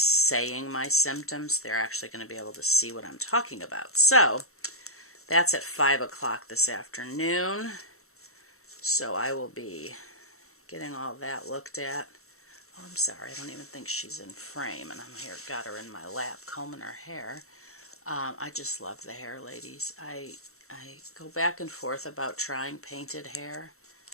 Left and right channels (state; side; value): late; right; 0.63 ms